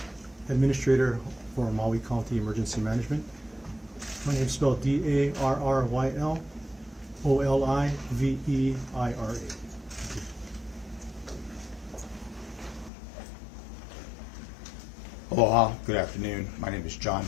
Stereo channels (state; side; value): drops out; right; at 12.9 s